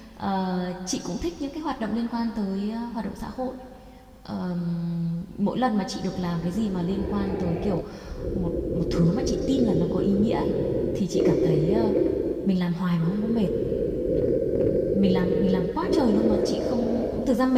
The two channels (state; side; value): identical; both; correlation 1.00